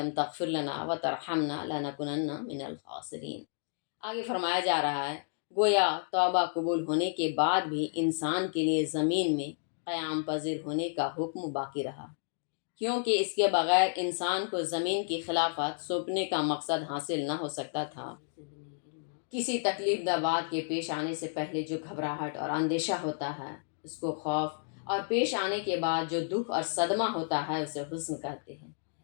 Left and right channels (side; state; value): right; silent; digital silence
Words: تغفر لنا وترحمنا لنکونن من الخاسرین۔ آگے فرمایا جا رہا ہے گویا توبہ قبول ہونے کے بعد بھی انسان کے لیے زمین میں قیام پذیر ہونے کا حکم باقی رہا، کیونکہ اس کے بغیر انسان کو زمین کی خلافت سونپنے کا مقصد حاصل نہ ہو سکتا تھا۔ کسی تکلیف دہ بات کے پیش آنے سے پہلے جو گھبراہٹ اور اندیشہ ہوتا ہے اس کو خوف، اور پیش آنے کے بعد جو دکھ اور صدمہ ہوتا ہے اسے حزن کہتے ہیں۔